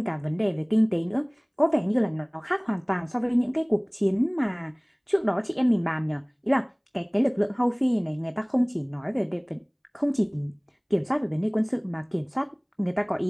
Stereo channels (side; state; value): both; identical; correlation 1.00